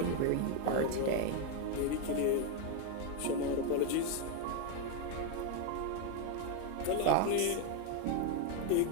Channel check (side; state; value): both; different; correlation 0.01